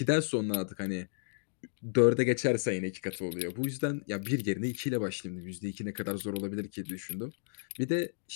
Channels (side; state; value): right; silent; digital silence